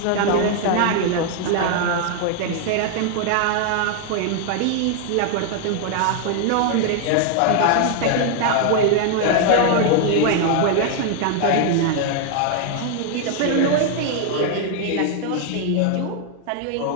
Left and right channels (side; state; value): both; different; correlation 0.00